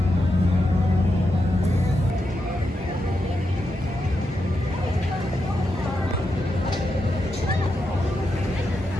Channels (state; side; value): normal; both; correlation 0.86